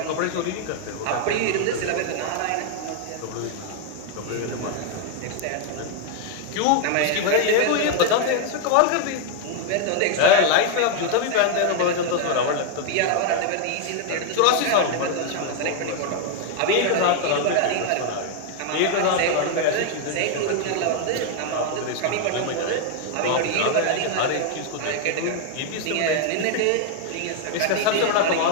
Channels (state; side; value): different; both; correlation 0.00